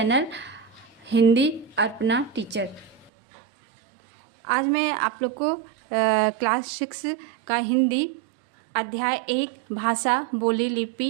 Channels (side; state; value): left; drops out; at 3.1 s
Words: Hindi Arpana teacher. आज मैं आप लोग को क्लास 6 का हिंदी अध्याय 1 भाषा, बोली,